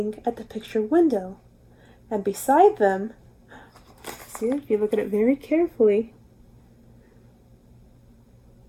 at the picture window. And beside them, see if you look at it very carefully,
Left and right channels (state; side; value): identical; both; correlation 1.00